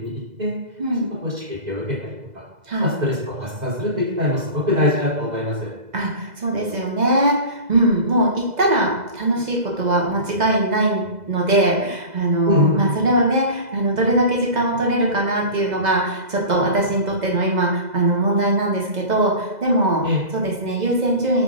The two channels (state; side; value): late; left; 2.0 ms